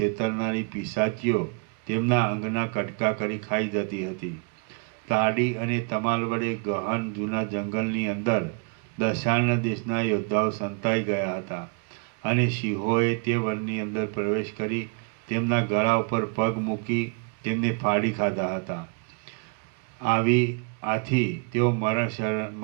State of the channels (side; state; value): left; quieter; 36.4 dB